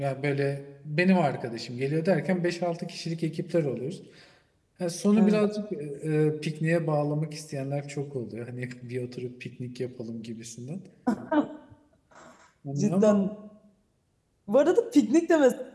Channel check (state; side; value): identical; both; correlation 1.00